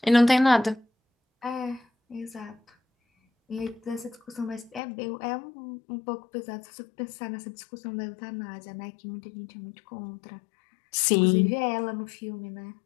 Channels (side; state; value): right; drops out; at 4.8 s